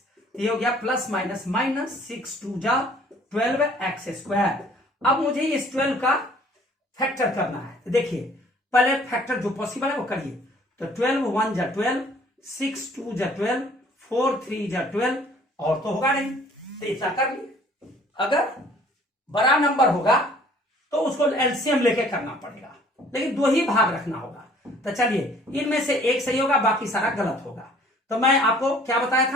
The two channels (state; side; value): normal; both; correlation 0.55